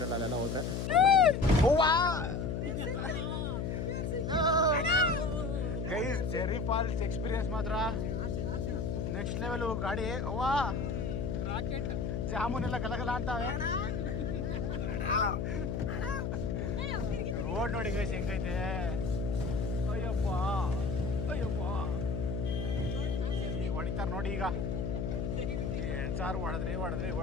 ಅಲ್ಲೆಲ್ಲ ಹೋದರೆ. ಗೈಸ್ ಜೆರಿ ಫಾಲ್ಸ್ ಎಕ್ಸ್ಪೀರಿಯನ್ಸ್ ಮಾತ್ರ ನೆಕ್ಸ್ಟ್ ಲೆವೆಲ್. ಗಾಡಿ ಅವ್ವಾ ರಾಕೆಟ್ ಜಾಮೂನೆಲ್ಲ ಗಲಗಲ ಅಂತಾವೆ. ರೋಡ್ ನೋಡಿ ಗೈಸ್ ಹೆಂಗೈತೆ. ಅಯ್ಯಪ್ಪ ಈಗ ಹೊಡಿತಾರ ನೋಡಿ. ಈಗ ಸಾರು ಹೊಡೆದ್ರಿ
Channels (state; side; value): noise; left; hum, 1 dB below the sound